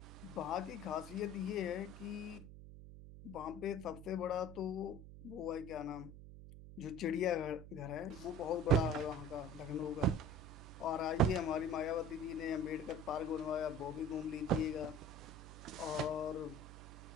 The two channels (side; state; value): right; noise; hum, 13 dB below the sound